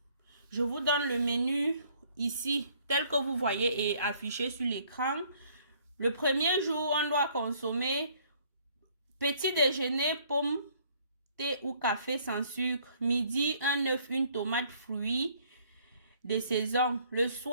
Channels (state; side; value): inverted; both; correlation -0.62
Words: Je vous donne le menu ici, tel que vous voyez et affiché sur l'écran. Le premier jour, on doit consommer petit déjeuner, pommes, thé ou café sans sucre. Midi, un œuf, une tomate, fruits de saison. Le